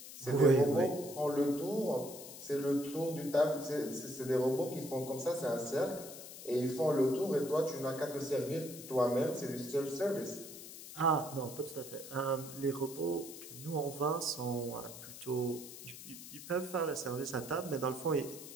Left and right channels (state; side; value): noise; left; hiss, 13 dB below the sound